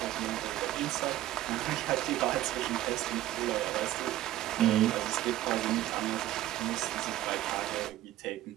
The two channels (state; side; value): quieter; left; 14.1 dB